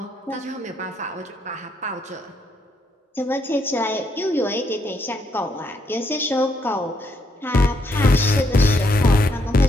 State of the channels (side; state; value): both; normal; correlation 0.74